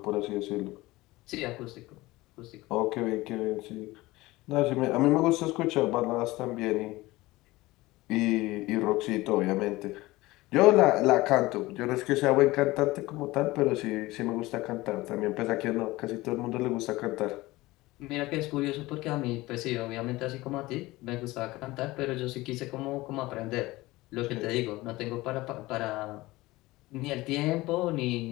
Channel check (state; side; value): quieter; right; 19.7 dB